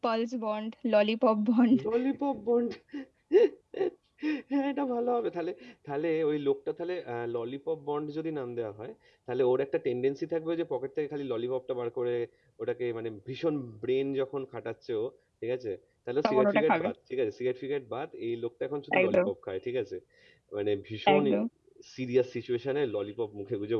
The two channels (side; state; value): both; identical; correlation 1.00